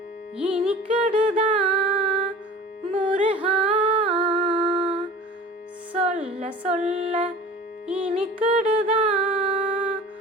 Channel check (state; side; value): normal; both; correlation 0.41